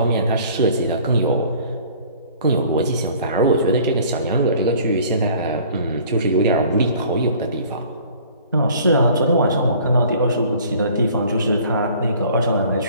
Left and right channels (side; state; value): both; inverted; correlation -0.52